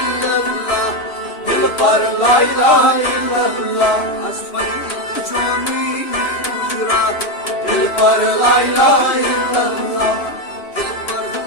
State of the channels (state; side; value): late; right; 3.0 ms